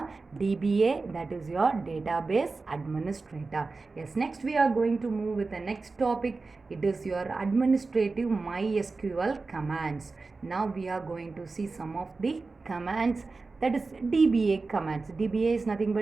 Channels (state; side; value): quieter; left; 3.9 dB